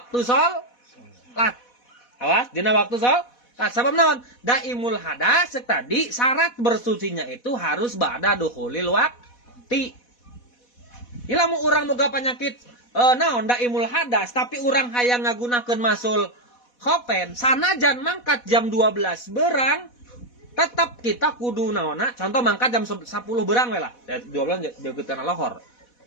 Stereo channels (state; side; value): late; right; 4.1 ms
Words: sholat. Awas, dina waktu sholat. Sabab naon? Daimul hadas tadi syarat bersucinya itu harus ba'da dukhulil waqti. Ilamu urang boga penyakit naon daimul hadas tapi urang hayang ngagunakeun masul khofen sanajan mangkat jam 12 berang tetap kita kudu naonna contoh mangkat jam 10 berang we lah 12 deukeut kana lohor